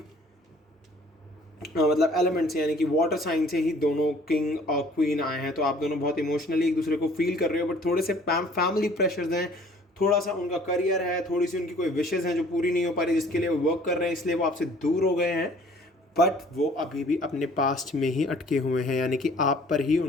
मतलब एलिमेंट से, यानी कि वाटर साइन से ही दोनों किंग और क्वीन आए हैं। तो आप दोनों बहुत इमोशनली एक दूसरे को फील कर रहे हो, बट थोड़े से फैमिली प्रेशर्स हैं, थोड़ा सा उनका करियर है, थोड़ी सी उनकी कोई विशेज़ हैं जो पूरी नहीं हो पा रही, जिसके लिए वो वर्क कर रहे हैं, इसलिए वो आपसे दूर हो गए हैं। बट वो अभी भी अपने पास्ट में ही अटके हुए हैं, यानी कि आप पर ही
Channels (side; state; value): both; normal; correlation 0.54